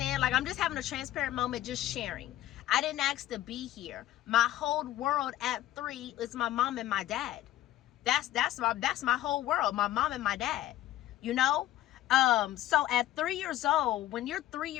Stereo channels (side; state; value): right; quieter; 14.2 dB